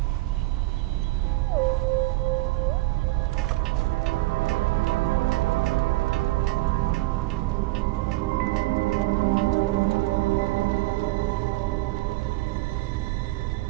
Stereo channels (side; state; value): left; quieter; 19.8 dB